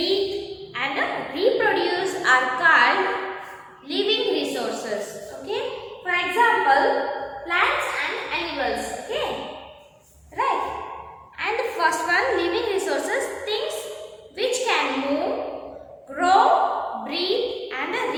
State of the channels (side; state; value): both; identical; correlation 1.00